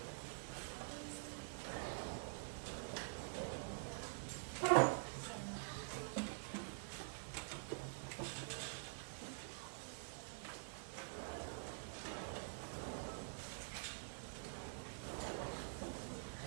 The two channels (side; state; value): left; silent; digital silence